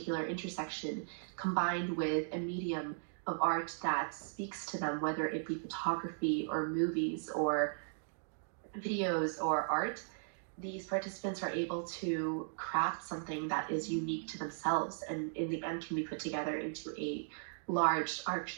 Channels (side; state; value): left; silent; digital silence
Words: intersection, combined with a medium of art that speaks to them, whether it be photography or movies or videos or art, these participants are able to craft something that is unique to themselves and in the end can be put together into a large art